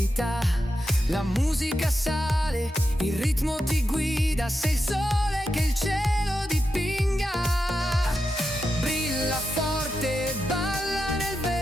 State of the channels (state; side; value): normal; both; correlation 0.88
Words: La musica sale, il ritmo ti guida, sei il sole che il cielo dipinga. Brilla forte, balla nel